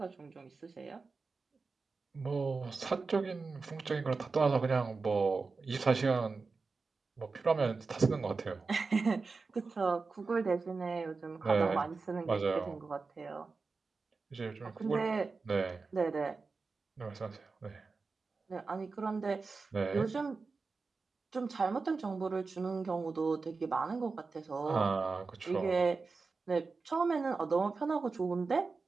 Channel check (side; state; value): left; quieter; 4.3 dB